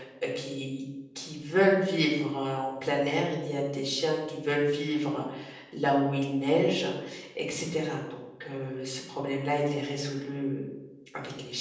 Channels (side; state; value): both; identical; correlation 1.00